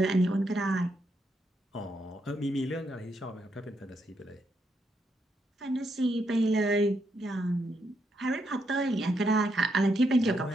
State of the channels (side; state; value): both; normal; correlation 0.79